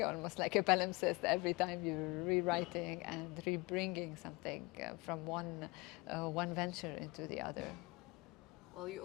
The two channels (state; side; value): quieter; right; 24.8 dB